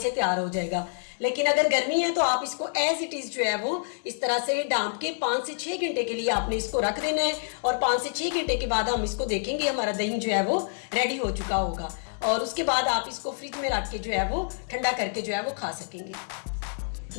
तैयार हो जाएगा। लेकिन अगर गर्मी है तो आप इसको एज इट इज़ जो है वो इस तरह से डांप के 5 से 6 घंटे के लिए आपने इसको रख देना है। और 5 से 6 घंटे के बाद हम इसको देखेंगे, हमारा दही जो है वो रेडी हो चुका होगा, और उसके बाद आप इसको फ्रिज में रख के जो है वो ठंडा करके जो है वो खा सकेंगे।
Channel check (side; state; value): right; silent; digital silence